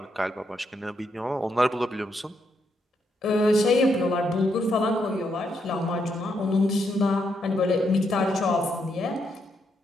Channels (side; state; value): both; normal; correlation 0.78